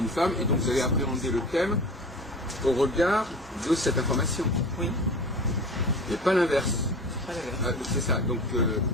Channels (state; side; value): normal; both; correlation 0.35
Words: femme, et donc vous allez appréhender le thème au regard de cette information. Oui, Et pas l'inverse. pas la verre. C'est ça. Donc,